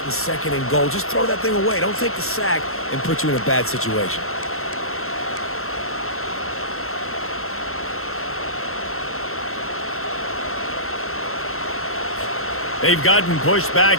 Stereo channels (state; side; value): late; right; 0.62 ms